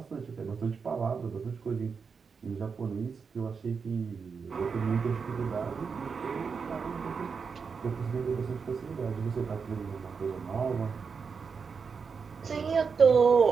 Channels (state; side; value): quieter; left; 5.6 dB